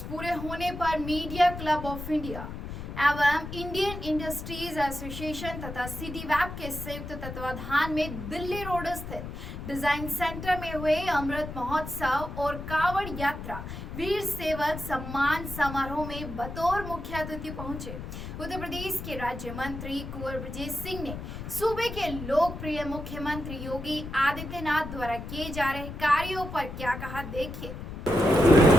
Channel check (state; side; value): noise; left; rumble, 8 dB below the sound